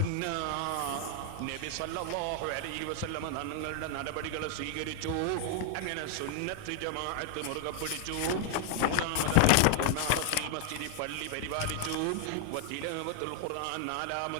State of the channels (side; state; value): both; different; correlation 0.00